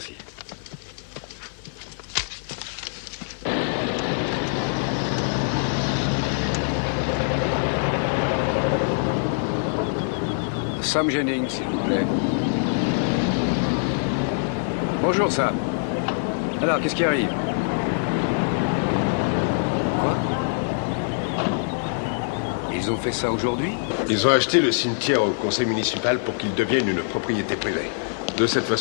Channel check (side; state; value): right; silent; 58 dB below the other